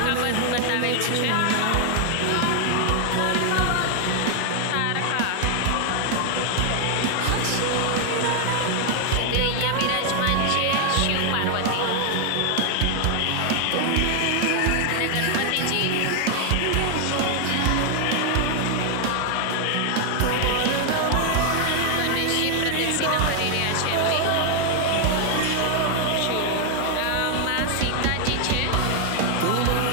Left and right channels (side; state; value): both; different; correlation 0.00